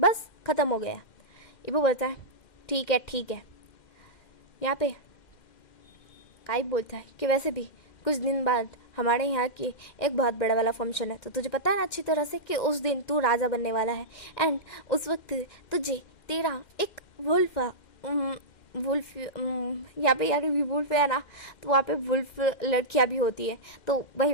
ख़त्म हो गया। वो बोलता है ठीक है। यहाँ पे काई बोलता है कि वैसे भी कुछ दिन बाद हमारे यहाँ की एक बहुत बड़ा वाला फंक्शन है, तो तुझे पता है ना अच्छी तरह से कि उस दिन तू राजा बनने वाला है, एंड उस वक्त तुझे तेरा एक वुल्फ यहाँ पे यार भी वुल्फ है ना, तो वहाँ पे वुल्फ लड़कियाँ भी होती है, तो वही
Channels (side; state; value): right; late; 2.1 ms